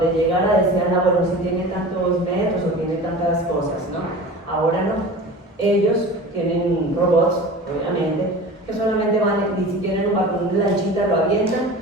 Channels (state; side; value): normal; both; correlation 0.36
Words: llegara decían, ah, bueno, si tiene tantos metros o tiene tantas cosas, ¿no? Ahora no. Ellos tienen robots, obviamente, que solamente van, y si tienen un balcón de lanchita, lo avientan